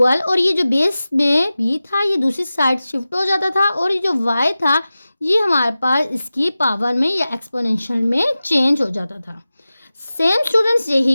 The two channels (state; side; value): inverted; both; correlation -0.95